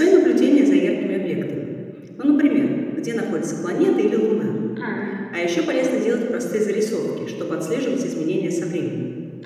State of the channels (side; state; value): both; identical; correlation 1.00